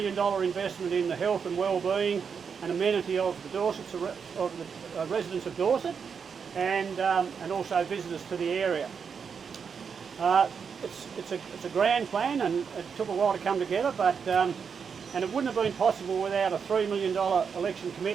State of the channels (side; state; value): left; quieter; 6.4 dB